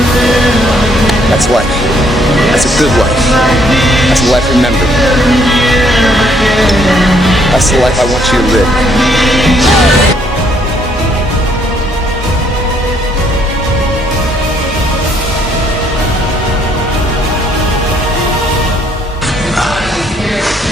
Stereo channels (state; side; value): normal; both; correlation 0.67